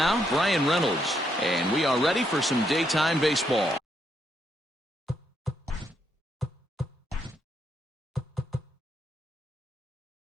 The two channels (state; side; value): normal; both; correlation 0.77